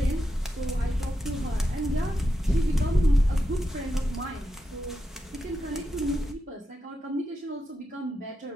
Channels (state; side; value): normal; both; correlation 0.87